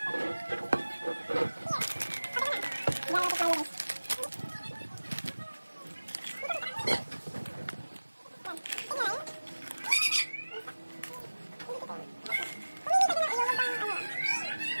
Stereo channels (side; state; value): both; inverted; correlation -1.00